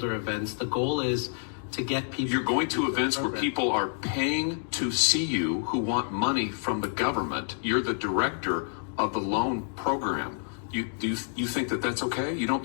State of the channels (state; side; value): silent; right; 59 dB below the other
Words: events. The goal is to get people. You're going to events where people are paying to see you who want money from the government. You're the director of the loan program. You think that that's okay? You